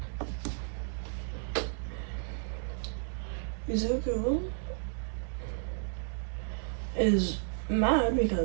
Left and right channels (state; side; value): silent; left; 56 dB below the other